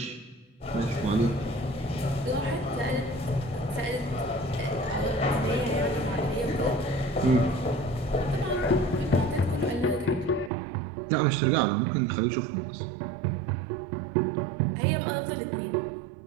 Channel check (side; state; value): left; drops out; at 10.5 s